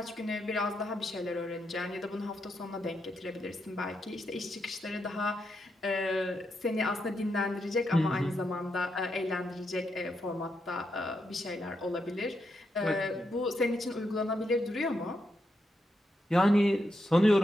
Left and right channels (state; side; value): normal; both; correlation 0.82